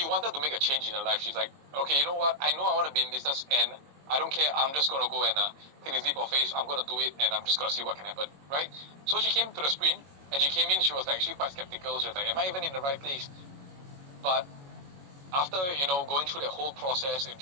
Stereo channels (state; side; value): late; left; 22 ms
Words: wanted to make a change in her life. She's like, okay, you know what? I know I want to be in business, and I don't care. I'm just going to go and take this leap of faith. I'm going to do it, and I'm just going to see what can happen, right? So she came to the sprint, and she came in. She was actually quite skeptical. She was like, am I even in the right place? But after, going through the whole process and